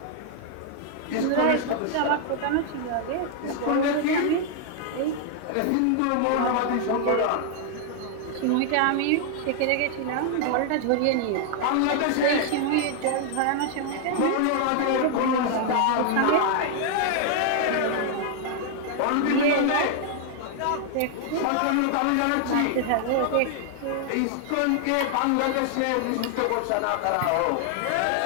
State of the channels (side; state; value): both; different; correlation 0.00